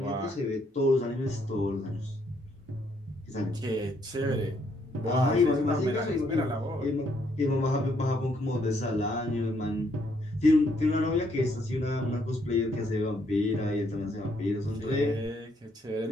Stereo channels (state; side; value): normal; both; correlation 0.71